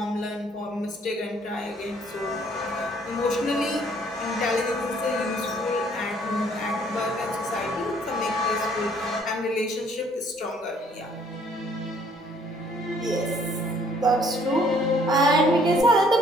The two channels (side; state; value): both; normal; correlation 0.62